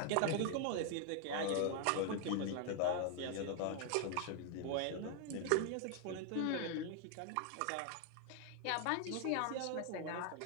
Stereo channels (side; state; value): both; different; correlation 0.00